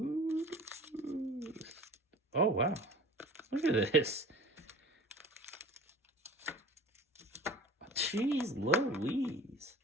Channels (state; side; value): normal; both; correlation 0.43